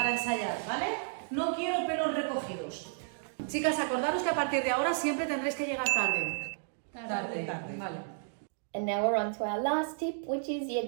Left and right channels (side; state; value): left; silent; digital silence